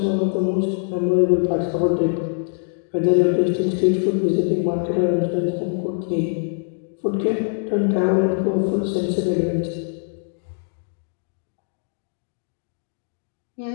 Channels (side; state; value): right; silent; digital silence